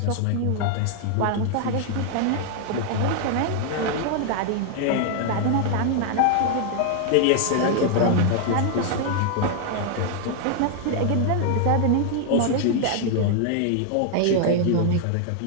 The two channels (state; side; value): different; both; correlation 0.00